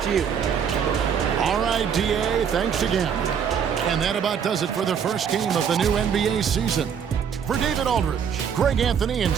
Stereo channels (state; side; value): quieter; left; 7.6 dB